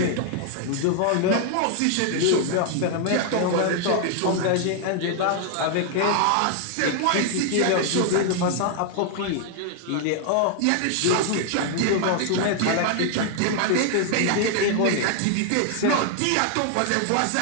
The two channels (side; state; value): both; different; correlation 0.00